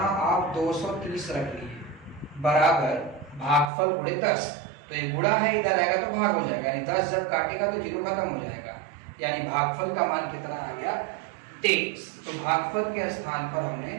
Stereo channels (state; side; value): drops out; left; at 3.7 s